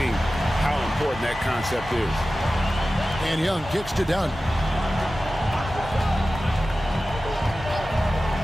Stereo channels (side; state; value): both; normal; correlation 0.95